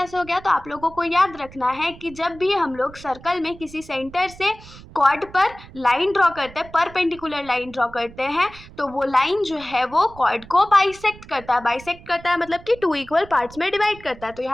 हो गया? तो आप लोगों को याद रखना है कि जब भी हम लोग सर्कल में किसी सेंटर से कॉर्ड पर लाइन ड्रॉ करते हैं, परपेंडिकुलर लाइन ड्रॉ करते हैं, तो वो लाइन जो है वो कॉर्ड को बाइसेक्ट करता है। बाइसेक्ट करता है मतलब कि टू इक्वल पार्ट्स में डिवाइड करता है। तो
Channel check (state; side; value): noise; right; rumble, 19 dB below the sound